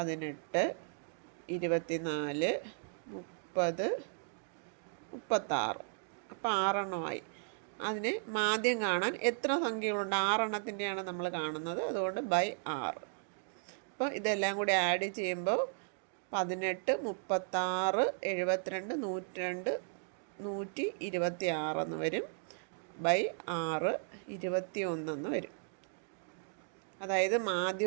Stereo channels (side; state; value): left; silent; digital silence